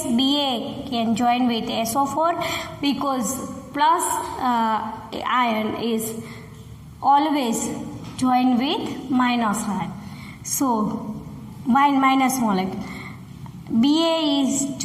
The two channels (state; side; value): identical; both; correlation 1.00